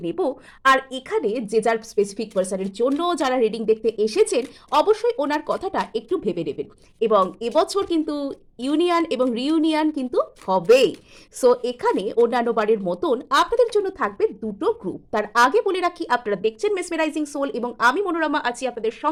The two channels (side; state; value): both; identical; correlation 1.00